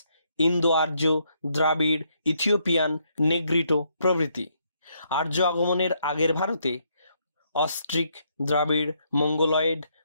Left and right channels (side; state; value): both; inverted; correlation -0.74